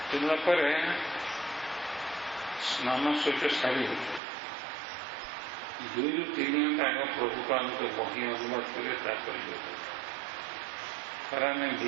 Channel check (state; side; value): drops out; left; at 4.2 s